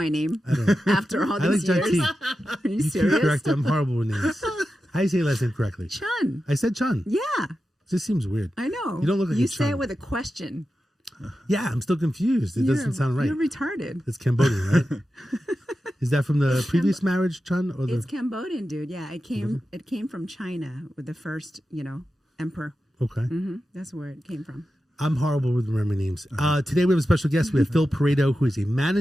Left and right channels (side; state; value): both; normal; correlation 0.91